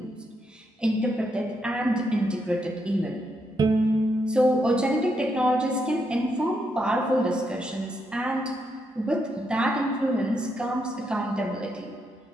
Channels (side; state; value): both; normal; correlation 0.79